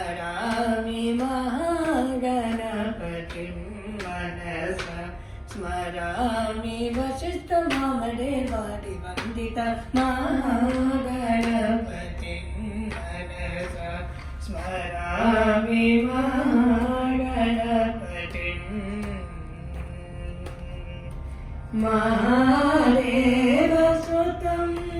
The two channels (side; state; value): both; identical; correlation 1.00